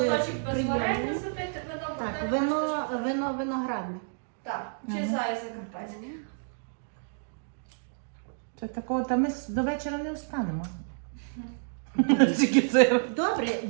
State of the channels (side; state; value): left; silent; digital silence